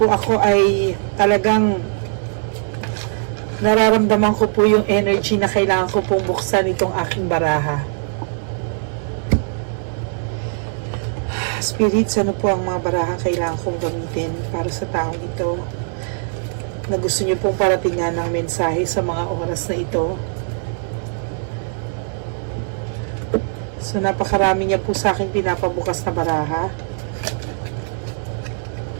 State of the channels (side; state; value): left; silent; 65 dB below the other